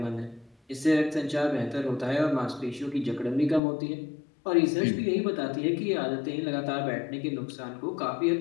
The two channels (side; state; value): right; drops out; at 3.6 s